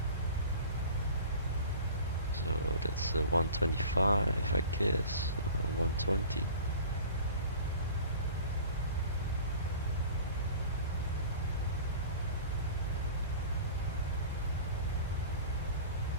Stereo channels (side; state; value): both; inverted; correlation -0.41